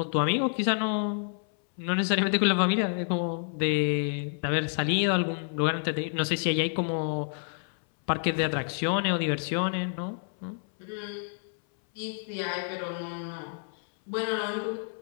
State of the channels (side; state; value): right; silent; 59 dB below the other